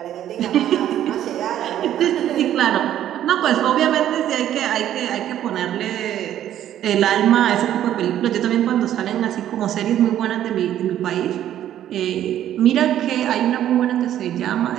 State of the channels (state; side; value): quieter; left; 11.5 dB